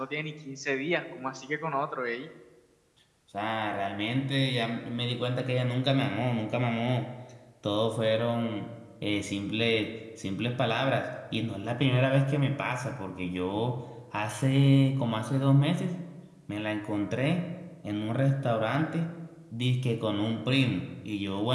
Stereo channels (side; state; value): both; identical; correlation 1.00